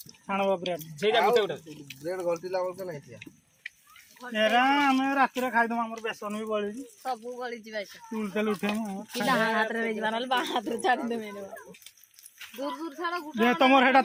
खाणबो ब्रेड जे जा गुटे गुटे ब्रेड गलती लागल के नहीं थिया एरा हम रात रे खाइ दम हमर बेसन भी बळी सब गली जीवा तुल तेल उठे म कि डाहां हाथ रे जीवा नल बाहां हाथ रे छाड़ दे मेरे दूर दूर छाड़ा गुटा जे तमर हेटा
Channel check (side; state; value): both; identical; correlation 1.00